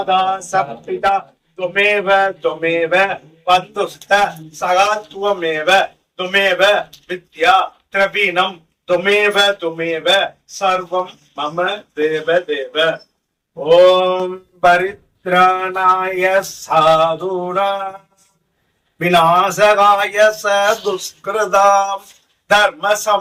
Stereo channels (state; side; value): identical; both; correlation 1.00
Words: சப்பிதா துமேவ துமேவ பந்துஸ்த சகாத்வமேவ துமேவ வித்யா திரவீணம் துமேவ துமேவ சர்வம் மம தேவ தேவ. ஓம் பரித்ராணாய சாதுனா விநாசகாய ச துஷ்கிருதாம் தர்ம